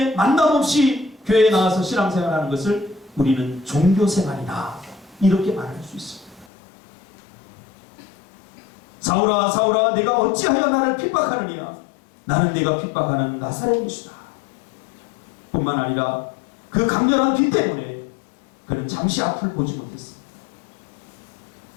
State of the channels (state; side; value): drops out; right; at 6.5 s